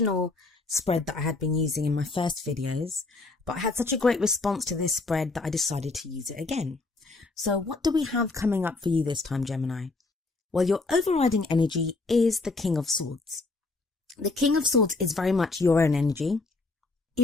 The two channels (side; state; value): right; quieter; 3.5 dB